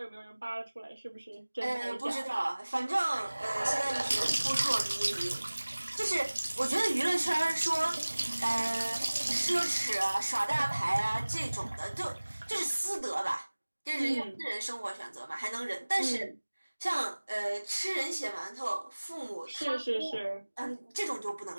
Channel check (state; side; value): inverted; both; correlation -1.00